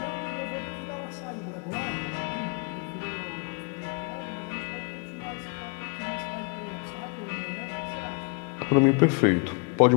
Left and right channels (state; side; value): quieter; right; 34.3 dB